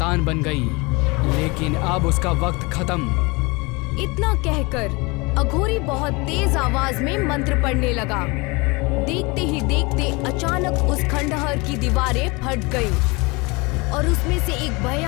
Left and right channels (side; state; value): right; quieter; 26.3 dB